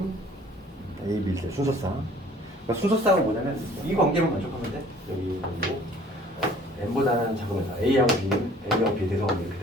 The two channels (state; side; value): normal; both; correlation 0.53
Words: A, B, C 순서상. 그러니까 순서상은 뭐냐면 이 관계만 만족하면 돼. 여기 뭐 n보다는 작으면서 A하고 B는 A하고 B 대성하면